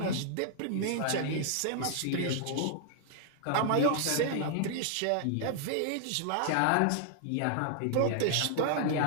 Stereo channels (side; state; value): both; different; correlation 0.00